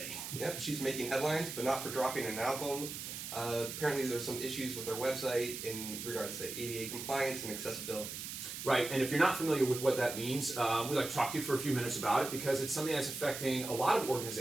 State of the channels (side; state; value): right; noise; hiss, 7 dB below the sound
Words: Yep, she's making headlines, but not for dropping an album. Apparently there's some issues with their website in regards to ADA compliance and accessibility. Right, and if you're not familiar with what that means, we'd like to talk to you for a few minutes about it because it's something that's affecting a lot of